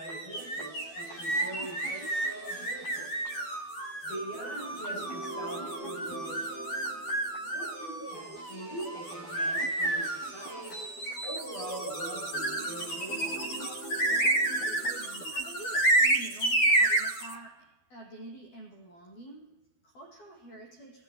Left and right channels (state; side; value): late; right; 12 ms